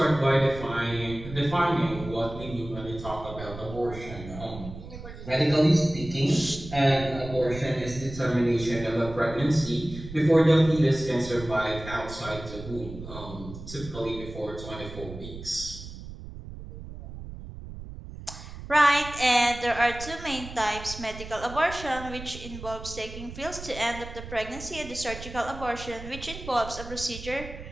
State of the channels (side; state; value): right; noise; rumble, 12 dB below the sound